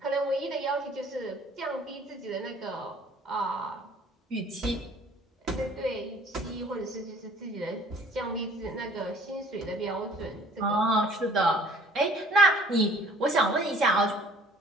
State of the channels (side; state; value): both; normal; correlation 0.55